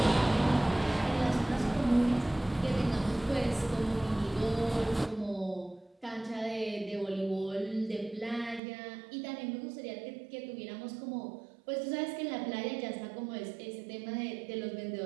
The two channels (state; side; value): drops out; left; at 8.6 s